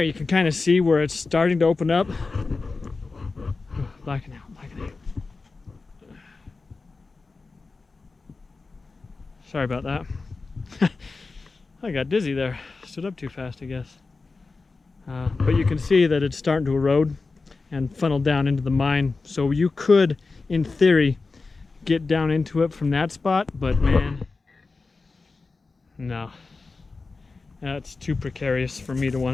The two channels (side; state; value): right; quieter; 4.0 dB